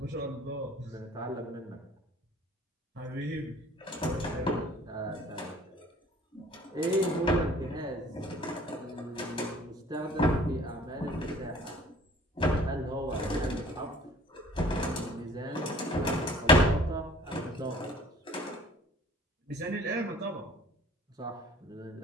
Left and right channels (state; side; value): normal; both; correlation 0.52